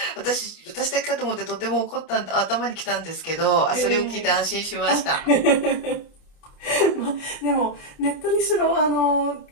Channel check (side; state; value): right; late; 30 ms